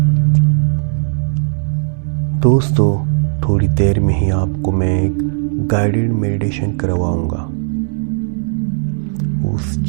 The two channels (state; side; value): silent; left; digital silence